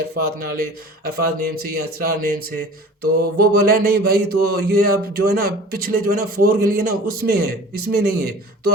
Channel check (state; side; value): normal; both; correlation 0.42